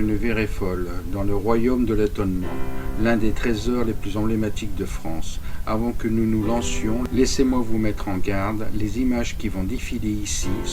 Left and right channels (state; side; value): identical; both; correlation 1.00